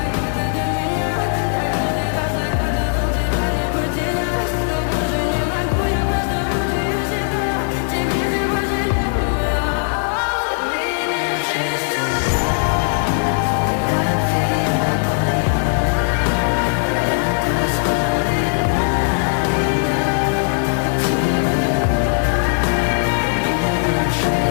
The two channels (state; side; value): silent; right; digital silence